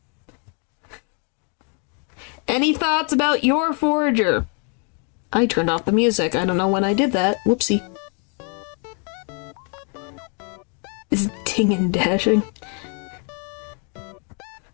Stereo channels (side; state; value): right; quieter; 39.6 dB